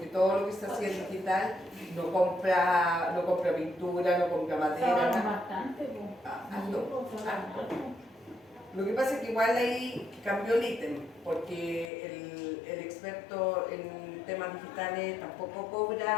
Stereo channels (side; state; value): right; drops out; at 11.9 s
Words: todo lo que se hacía en digital no compra pintura, no compra madera, nada. Bastante, Lo que pasa es que igual ahí cambió el ítem, porque el experto en temas digitales tampoco